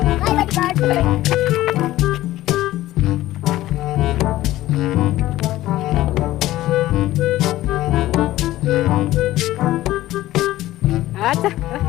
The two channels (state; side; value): quieter; right; 15.6 dB